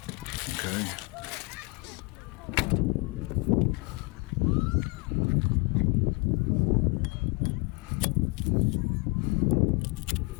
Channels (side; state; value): right; quieter; 28.3 dB